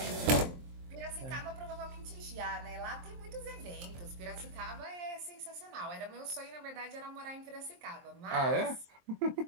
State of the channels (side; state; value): left; late; 23 ms